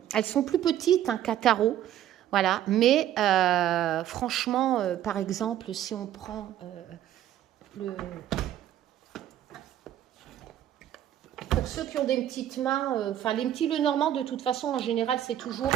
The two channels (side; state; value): left; quieter; 11.6 dB